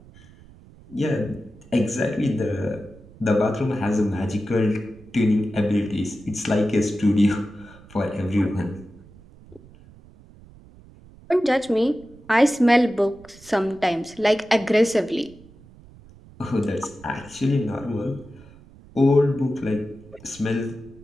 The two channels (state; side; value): noise; right; rumble, 23 dB below the sound